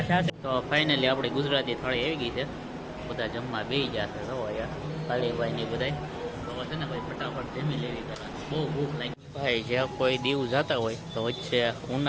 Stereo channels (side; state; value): both; identical; correlation 1.00